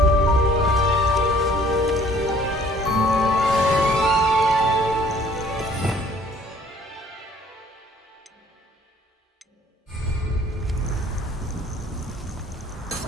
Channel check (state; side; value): normal; both; correlation 0.56